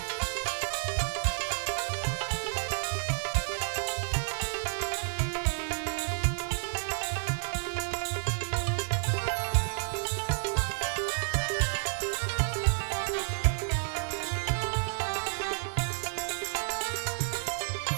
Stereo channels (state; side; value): silent; left; 56 dB below the other